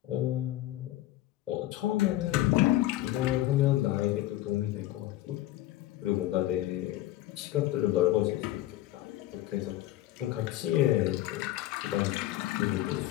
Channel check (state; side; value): quieter; right; 15.2 dB